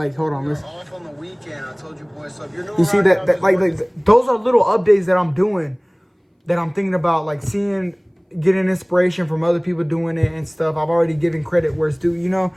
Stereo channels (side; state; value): both; identical; correlation 1.00